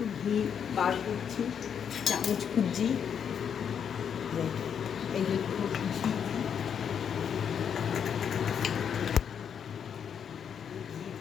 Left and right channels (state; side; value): quieter; right; 7.8 dB